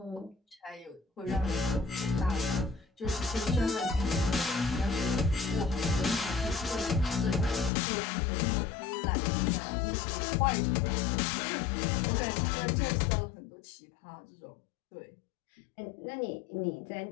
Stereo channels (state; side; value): drops out; right; at 7.7 s